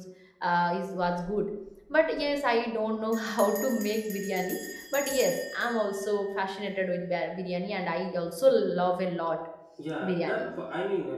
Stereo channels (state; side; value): identical; both; correlation 1.00